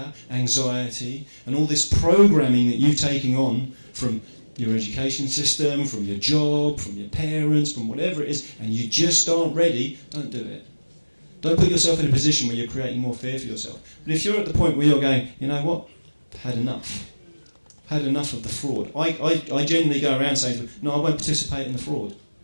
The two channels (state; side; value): inverted; both; correlation -1.00